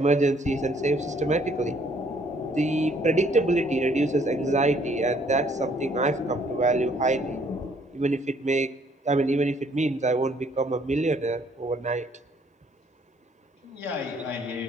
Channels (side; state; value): both; normal; correlation 0.64